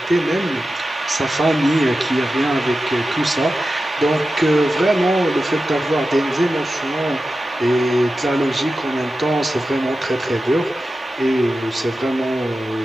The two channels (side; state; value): both; normal; correlation 0.92